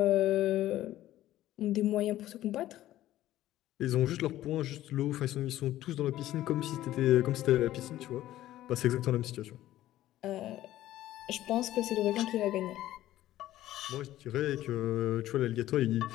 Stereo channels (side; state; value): right; quieter; 14.2 dB